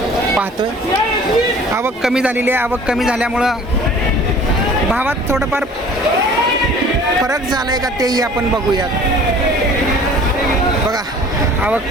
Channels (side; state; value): both; normal; correlation 0.48